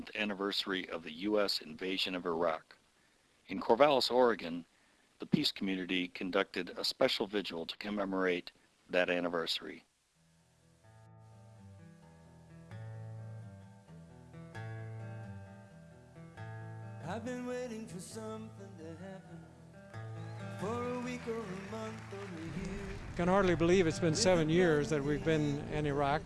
anniversary of the U.S. invasion of Iraq. In Corvallis, Oregon, the peace community conducted a special vigil to commemorate that anniversary. I've been waiting for something to happen for a week or a month or a year. Can hardly believe it's been 7 years that we've been in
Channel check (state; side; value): identical; both; correlation 1.00